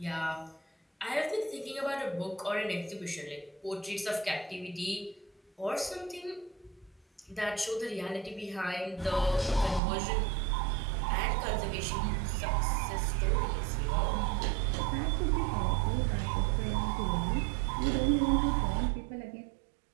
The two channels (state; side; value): drops out; left; at 9.8 s